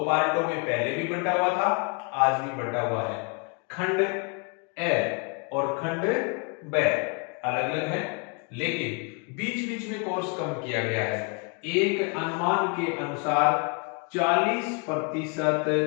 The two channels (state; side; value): quieter; right; 34.7 dB